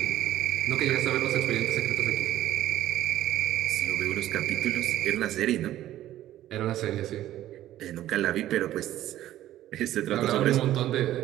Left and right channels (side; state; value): left; quieter; 13.5 dB